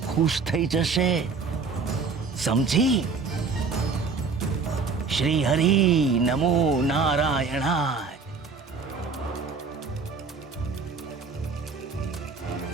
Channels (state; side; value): quieter; left; 4.8 dB